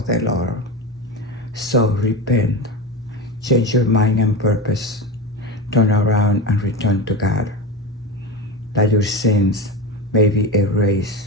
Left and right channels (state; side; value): normal; both; correlation 0.22